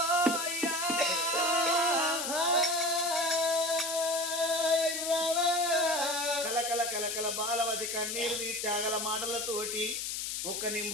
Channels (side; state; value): left; noise; hiss, 3 dB below the sound